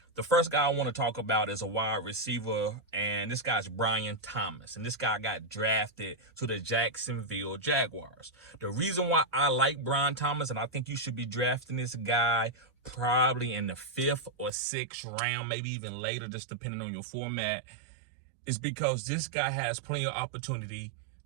The first guy I want to talk about is a wide receiver, and this guy's Brian Thomas. And this guy got drafted to the Jacksonville Jaguars. The reason why I like Brian Thomas, and I think you should be drafting this guy probably in the 5th or 6th round, maybe even later, just depending on your format, is because this guy has plenty of opportunity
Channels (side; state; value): left; drops out; at 14.5 s